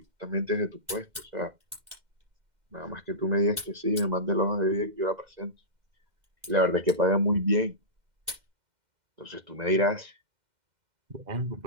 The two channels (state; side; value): late; left; 2.1 ms